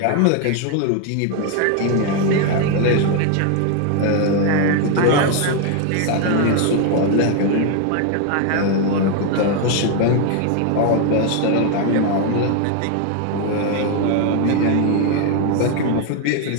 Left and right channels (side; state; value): both; different; correlation 0.01